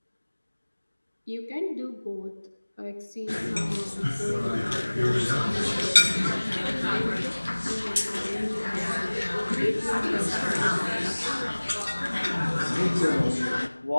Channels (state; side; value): inverted; both; correlation -1.00